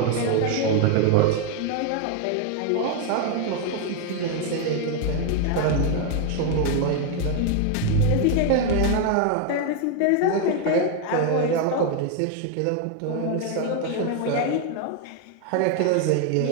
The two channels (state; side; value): different; both; correlation 0.01